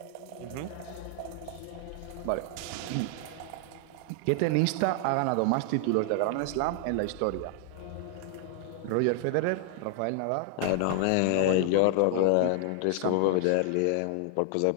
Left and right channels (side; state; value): both; different; correlation 0.00